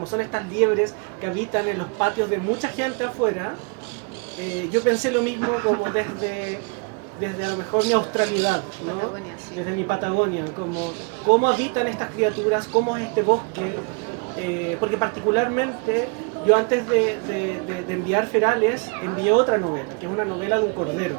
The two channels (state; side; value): quieter; left; 34.9 dB